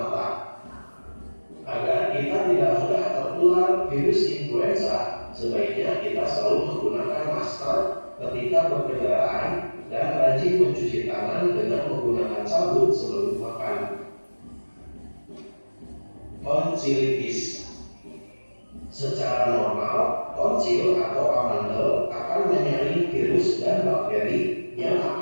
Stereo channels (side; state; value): both; inverted; correlation -1.00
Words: Agar kita tidak mudah tertular virus influenza, sebaiknya kita selalu menggunakan masker ketika berkendaraan dan rajin mencuci tangan dengan menggunakan sabun sebelum makan. Tonsilitis. Secara normal, tonsil atau amandel akan menyaring virus dan bakteri yang